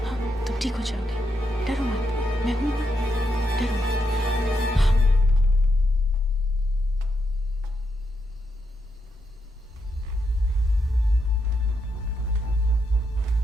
हाँ, तुम ठीक हो जाओगे, डरो मत, मैं हूं ना, डरो मत।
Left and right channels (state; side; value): normal; both; correlation 0.81